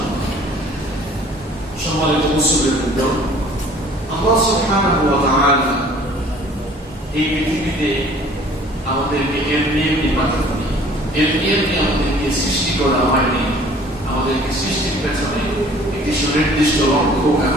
সম্মানিত মুসলিমবৃন্দ, আল্লাহ সুবহানাহু ওয়া তাআলা এই পৃথিবীতে আমাদেরকে এমনি পাঠাননি, এমনি আমাদেরকে সৃষ্টি করা হয়নি। আমাদেরকে সৃষ্টির পেছনে একটি সুনির্দিষ্ট লক্ষ্য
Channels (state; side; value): normal; both; correlation 0.52